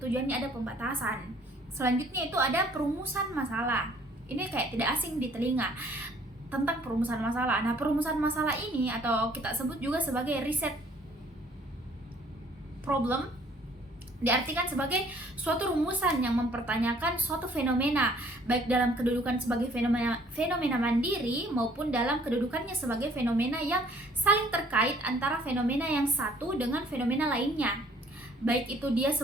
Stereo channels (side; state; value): both; normal; correlation 0.59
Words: ada pembatasan. Selanjutnya itu ada perumusan masalah. Ini kayak tidak asing di telinga, tentang perumusan masalah. Nah, perumusan masalah ini atau kita sebut juga sebagai riset problem diartikan sebagai suatu rumusan yang mempertanyakan suatu fenomena, baik dalam kedudukan sebagai fenomena mandiri maupun dalam kedudukannya sebagai fenomena yang saling terkait antara fenomena yang satu dengan fenomena lainnya, baik itu dia